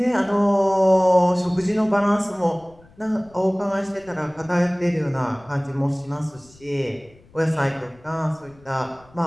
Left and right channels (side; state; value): left; noise; rumble, 27 dB below the sound